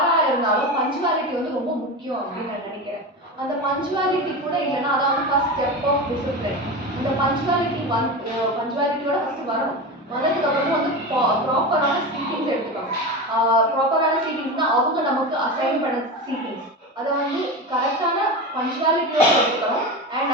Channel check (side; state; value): both; normal; correlation 0.24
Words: இருந்தாலும் பஞ்சுவாலிட்டி ரொம்ப முக்கியம் அப்படின்னு நான் நினைக்கிறேன். அந்த பஞ்சுவாலிட்டி கூட இல்லைன்னா அதான் ஃபர்ஸ்ட் ஸ்டெப் ஆஃப் டிசிப்ளின். அந்த பஞ்சுவாலிட்டியோட ஃபர்ஸ்ட் வரணும். வந்ததுக்கு அப்புறம் ப்ராப்பரான சீட்டிங்ஸ் எடுத்துக்கணும். ப்ராப்பரான சீட்டிங்ஸ்னா அவங்க நமக்கு அசைன் பண்ண சீட்டிங்ஸ் அதை கரெக்டான பஞ்சுவாலிட்டியோட எடுத்துக்கணும். அண்ட்